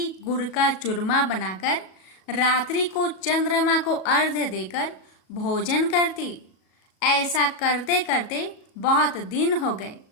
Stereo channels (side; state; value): right; late; 37 ms